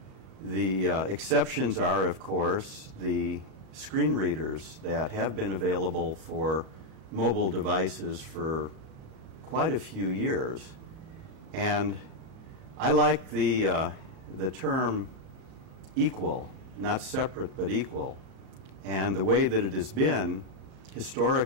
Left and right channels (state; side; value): late; left; 38 ms